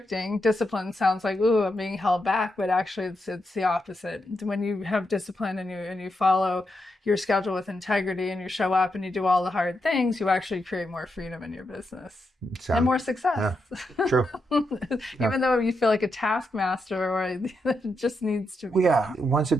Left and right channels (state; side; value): normal; both; correlation 0.84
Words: Discipline sounds like, ooh, I'm being held back, but actually it's the opposite. When you have discipline and you follow your schedule with integrity and you show up and you do all the hard things, you actually create more freedom in your business and more success. Yeah, true. Even though you feel like a taskmaster, or it just needs to be. Well, yeah, once it